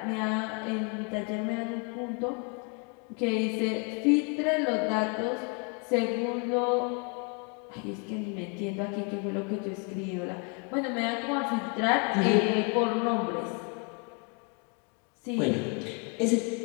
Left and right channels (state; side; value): quieter; right; 34.6 dB